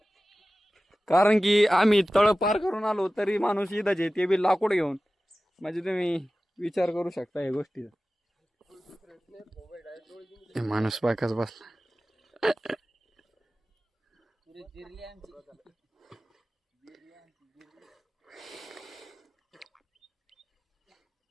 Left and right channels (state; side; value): normal; both; correlation 0.96